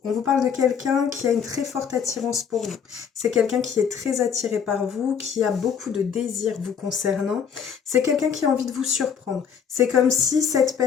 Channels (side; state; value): right; quieter; 7.2 dB